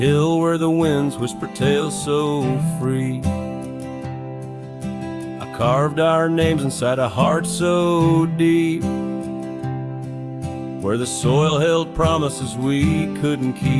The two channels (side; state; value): both; identical; correlation 1.00